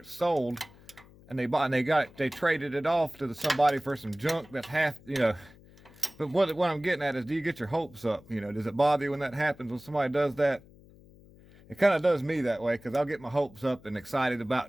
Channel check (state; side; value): noise; left; hum, 24 dB below the sound